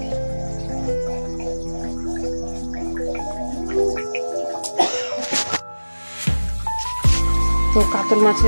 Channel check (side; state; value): both; inverted; correlation -1.00